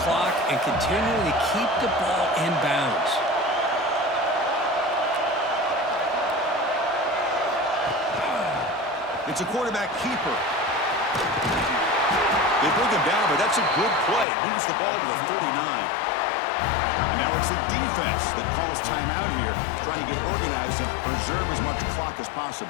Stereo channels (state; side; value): drops out; right; at 14.2 s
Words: clock and continuing to keep the ball in bounds. It's a quarterback keeper. They bring him down, but that's a good play. Moves the ball to the 39. And now it's the defense that calls timeout here, trying to get organized and preserve as much clock as